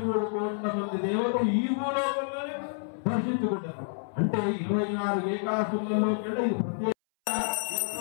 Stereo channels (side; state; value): right; silent; 59 dB below the other